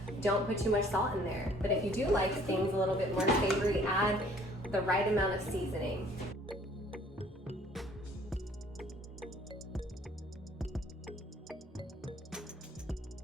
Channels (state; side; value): normal; both; correlation 0.57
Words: don't put too much salt in there. But if you do like things a little bit more savory, add the right amount of seasoning.